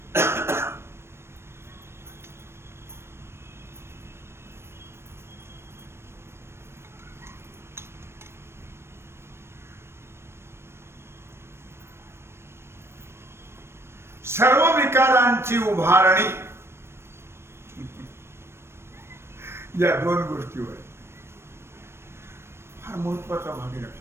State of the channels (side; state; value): left; late; 0.12 ms